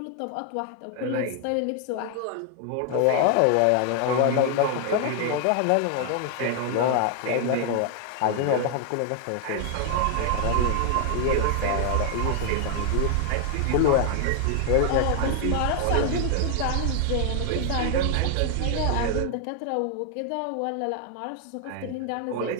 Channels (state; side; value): different; both; correlation 0.00